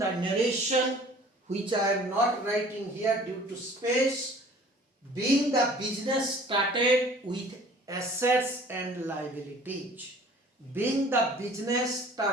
narration, which I am not writing here due to space. Being the business started with assets and liabilities. Being the business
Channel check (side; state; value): both; normal; correlation 0.50